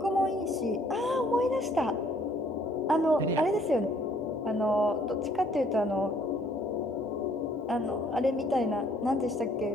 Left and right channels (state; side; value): normal; both; correlation 0.62